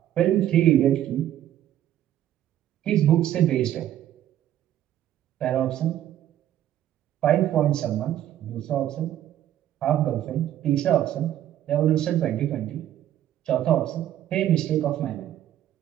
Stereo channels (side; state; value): left; quieter; 12.0 dB